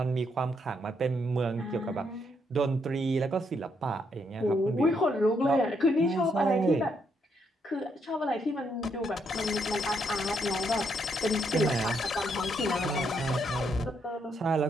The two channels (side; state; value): both; normal; correlation 0.75